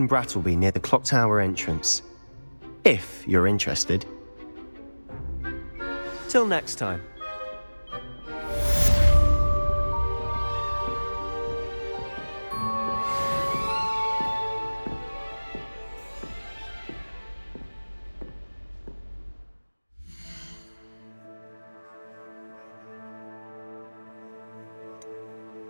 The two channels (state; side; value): inverted; both; correlation -1.00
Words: Brattleby near the clock tower entrance, if you're interested. Till next time.